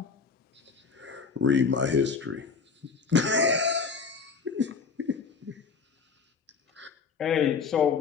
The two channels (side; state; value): right; quieter; 5.3 dB